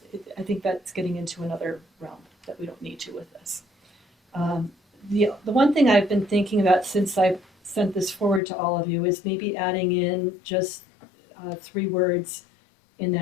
I think that's getting into another realm that we don't need to with this. The one thing I've been thinking about since I sent this forward to all of you is maybe adding in just 3 words, in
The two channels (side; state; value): right; drops out; at 8.4 s